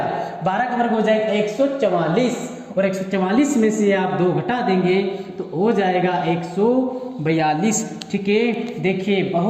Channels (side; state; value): both; identical; correlation 1.00